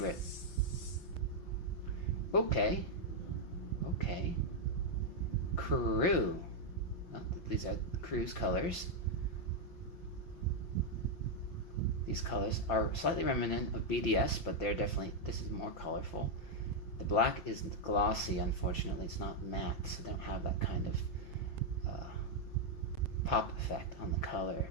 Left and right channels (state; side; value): late; right; 5.8 ms